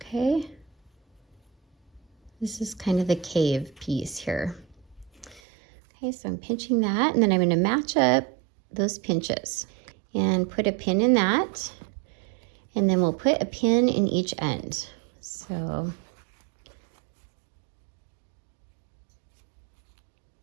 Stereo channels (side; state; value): left; drops out; at 5.4 s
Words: Okay, this is kind of the cave piece here. Okay, so I'm pinching that, and then I'm going to match up those pinches and put a pin in that, and then we'll put a pin in each end. So